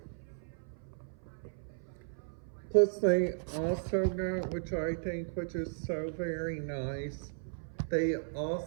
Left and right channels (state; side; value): silent; left; 54 dB below the other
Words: got, which is so very nice, they